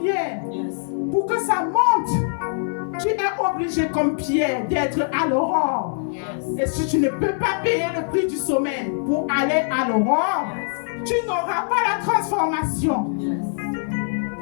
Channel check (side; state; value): right; silent; 63 dB below the other